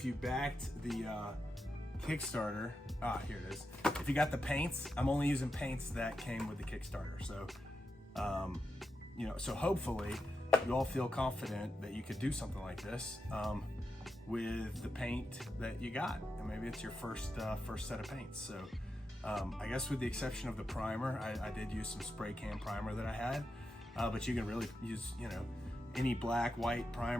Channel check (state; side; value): normal; both; correlation 0.87